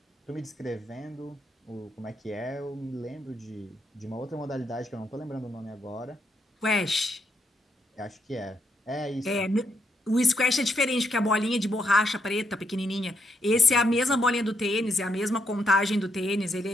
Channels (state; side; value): normal; both; correlation 0.78